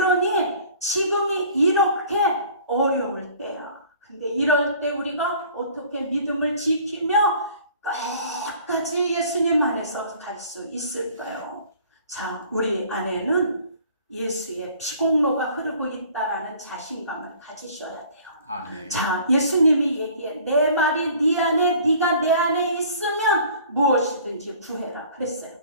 지금이 이렇게 어려울 때야. 근데 이럴 때 우리가 어떻게 믿음을 지키며 끝까지 예수님 안에서 갈 수 있을까요? 자, 우리 안에는 예수의 피공로가 흐르고 있다라는 자신감을 가지셔야 돼요. 아멘. 자, 예수님이 얘기해. 내 말이 네 안에, 네가 내 안에 있으면 무엇이든지 구해라 그랬어요.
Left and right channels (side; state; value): both; inverted; correlation -0.51